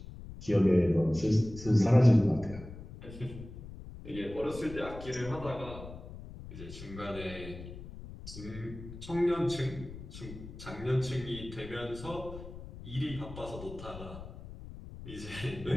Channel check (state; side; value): noise; left; rumble, 13 dB below the sound